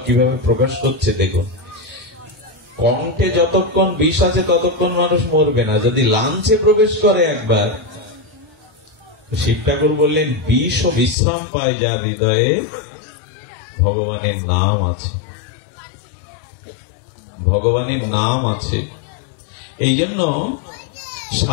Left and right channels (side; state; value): right; drops out; at 11.2 s